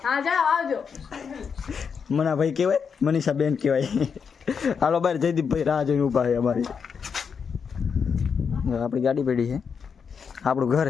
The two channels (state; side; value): quieter; right; 6.3 dB